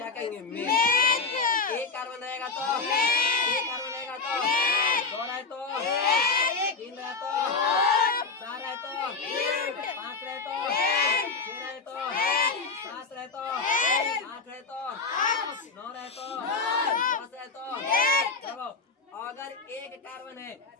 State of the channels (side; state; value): right; quieter; 4.4 dB